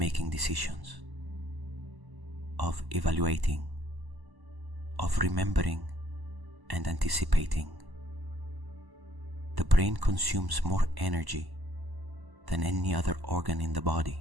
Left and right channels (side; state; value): left; late; 1.1 ms